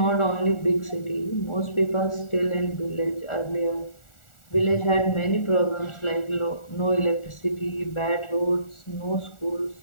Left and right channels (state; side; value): late; right; 1.4 ms